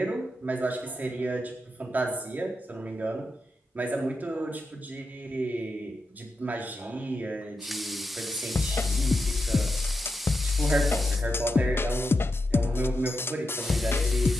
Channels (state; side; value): normal; both; correlation 0.87